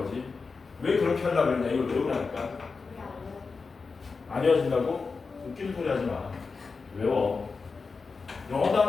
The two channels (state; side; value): quieter; right; 4.6 dB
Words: 왜 그렇게 하려고 그랬냐? 이걸 외우라니까. 안 외워진다고? 웃기는 소리 하지 마. 외워. 영어